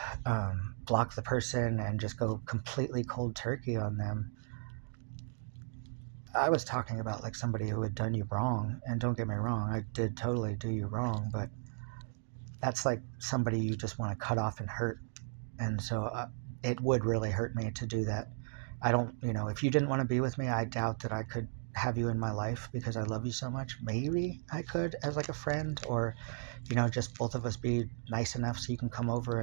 block the person and just go completely cold turkey on them. I was talking about like somebody who had done you wrong, and don't get me wrong, I did totally do you wrong, but that's like somebody you just want to cut off and hurt. And so it would really hurt me to do that. I don't, if you didn't want to be with me, I doubt that I could have you in my life because I love you so much. Maybe I could as like a friend or, just both of us be nice enough so you can come over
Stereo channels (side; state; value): left; silent; 54 dB below the other